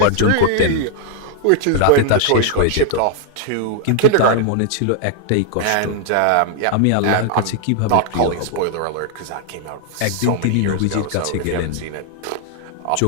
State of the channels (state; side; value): different; both; correlation 0.00